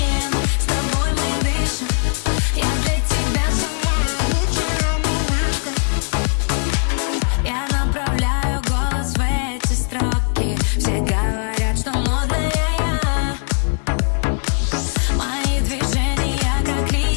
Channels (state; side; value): silent; right; 57 dB below the other